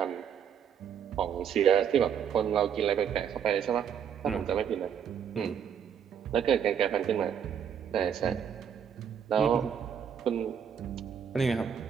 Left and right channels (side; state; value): left; quieter; 8.1 dB